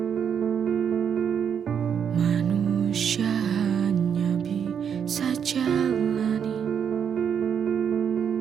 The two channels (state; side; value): quieter; left; 7.8 dB